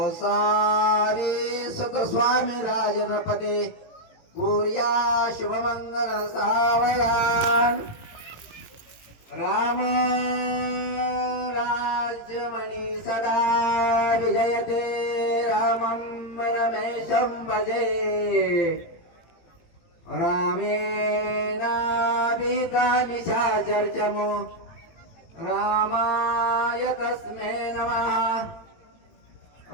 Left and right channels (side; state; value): right; late; 18 ms